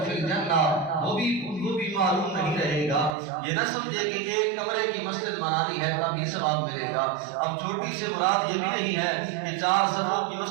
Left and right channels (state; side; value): drops out; left; at 3.1 s